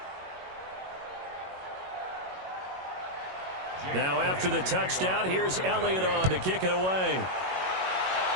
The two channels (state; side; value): late; left; 21 ms